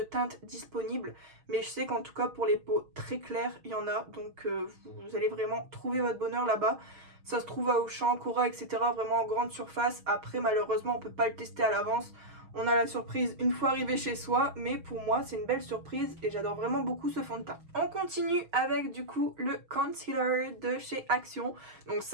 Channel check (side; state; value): left; late; 6.3 ms